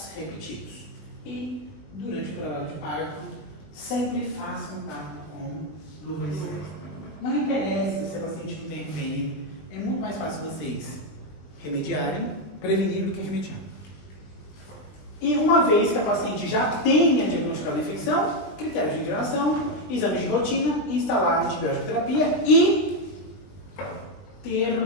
repetidos. E, durante o trabalho de parto, sempre façam tato com lubrificante. Não interessa se a paciente não tem RPM, é muito mais fácil vocês remediarem, prevenir do que remediar. E uma vez que a paciente já tenha diagnosticado a infecção, critérios de internação, exames de rotina, instalar a antibiótico terapia e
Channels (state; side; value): late; right; 20 ms